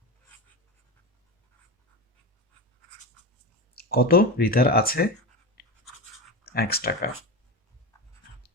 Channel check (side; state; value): both; normal; correlation 0.22